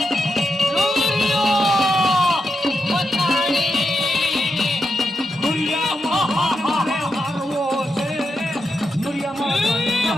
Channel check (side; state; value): both; normal; correlation 0.86